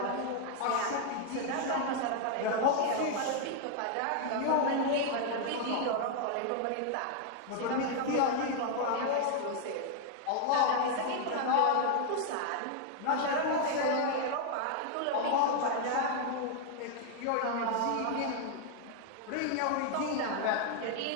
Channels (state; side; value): different; both; correlation 0.00